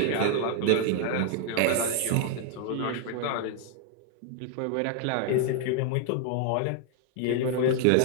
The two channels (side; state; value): both; different; correlation 0.00